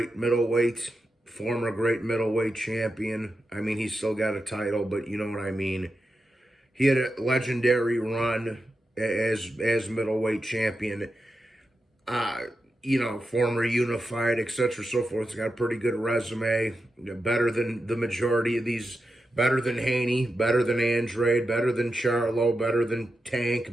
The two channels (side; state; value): both; normal; correlation 0.89